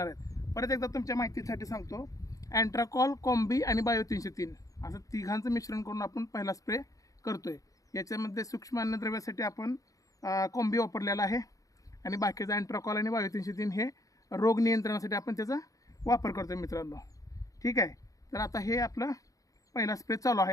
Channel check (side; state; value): right; late; 0.17 ms